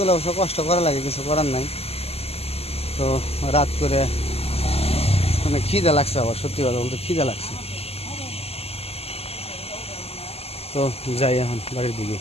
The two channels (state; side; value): late; right; 0.29 ms